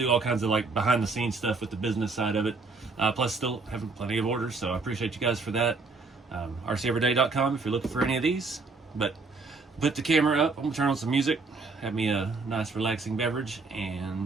do all kinds of like behind the scenes stuff with the business side of it. Plus still having plenty of orders, so I appreciate you guys for that. RCEveryday.com if you're looking for any of these. But put the camera up, I'm gonna turn on some music, have me a nice relaxing beverage,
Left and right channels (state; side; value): quieter; left; 3.9 dB